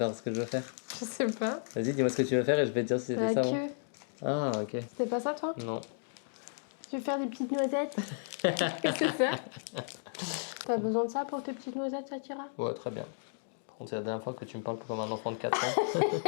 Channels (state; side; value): silent; right; digital silence